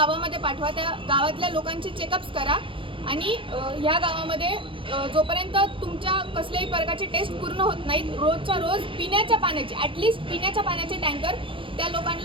पाठवा, त्या गावातल्या लोकांचे चेकअप्स करा आणि ह्या गावामध्ये जोपर्यंत तुमच्या कसल्याही प्रकारचे टेस्ट पूर्ण होत नाहीत रोजच्या रोज पिण्याच्या पाण्याचे ॲटलिस्ट पिण्याच्या पाण्याचे टँकर त्या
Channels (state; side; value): late; left; 0.25 ms